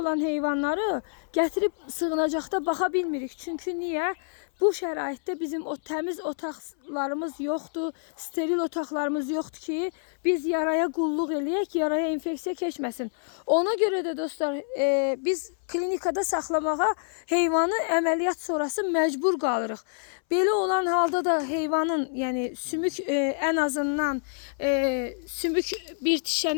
heyvanları gətirib sığınacaqda baxa bilmirik. Çünki niyə? Bu şəraitdə bizim o təmiz otaqlarımız yoxdur, steril otaqlarımız yoxdur ki, biz yaraya qulluq eləyək, yaraya infeksiya keçməsin. Ona görə də dostlar, biz klinikada saxlamağa heyvanı əməliyyat sonrası məcbur qalırıq. Belə olan halda da heyvanın, yəni sümük ən azından sümük bir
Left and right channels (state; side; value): silent; right; 60 dB below the other